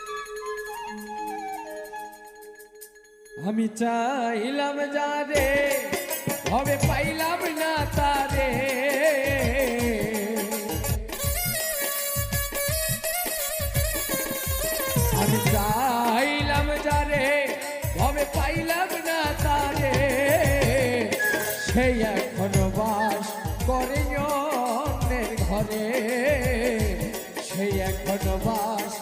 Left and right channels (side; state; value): both; identical; correlation 1.00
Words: আমি চাইলাম যারে হবে পাইলাম না তারে। আমি চাইলাম যারে হবে পাইলাম না তারে। সে এখন বাস করে অন্যের ঘরে। সে এখন বাস